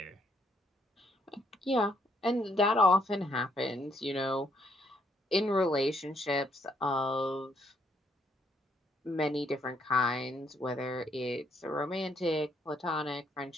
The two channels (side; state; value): both; normal; correlation 0.71